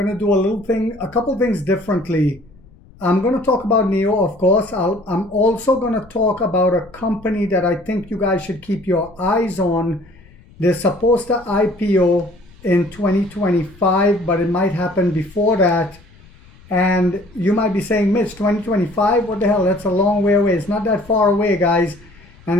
to do a couple things differently. I'm going to talk about NIO, of course. I'm also going to talk about a company that I think you guys should keep your eyes on. They're supposed to IPO in 2025, but it might happen before that. And you might be saying, Mitch, 2025? What the hell? That's a long way away. It's not that far away, guys. And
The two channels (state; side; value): noise; left; rumble, 25 dB below the sound